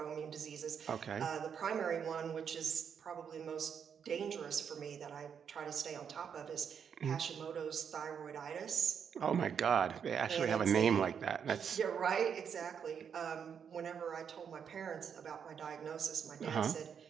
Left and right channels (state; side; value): quieter; left; 7.4 dB